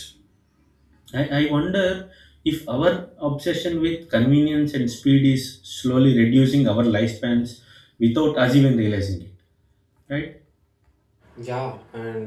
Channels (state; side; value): identical; both; correlation 1.00